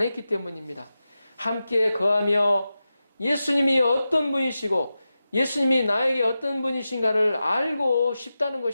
때문입니다. 함께 거하며 예수님이 어떤 분이시고 예수님이 나에게 어떤 분이신가를 알고 싶다는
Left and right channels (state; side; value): inverted; both; correlation -0.92